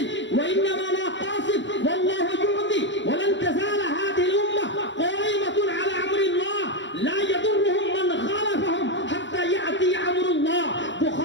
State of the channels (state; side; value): late; right; 0.54 ms